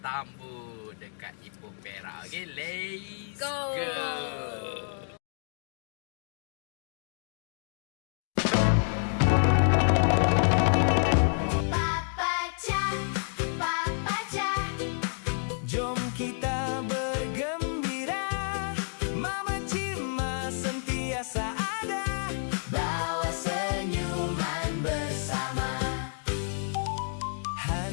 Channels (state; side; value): silent; right; digital silence